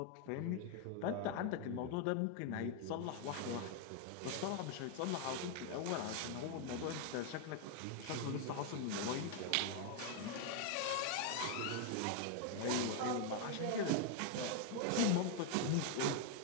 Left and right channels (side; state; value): both; different; correlation 0.00